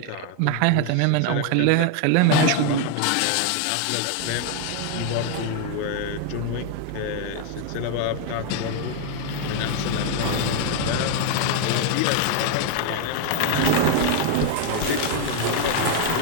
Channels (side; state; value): both; different; correlation 0.01